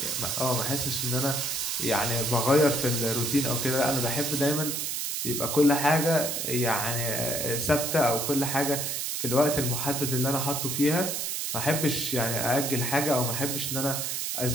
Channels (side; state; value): right; noise; hiss, 2 dB below the sound